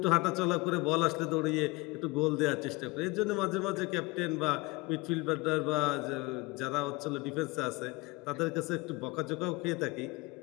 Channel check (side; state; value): right; quieter; 23.4 dB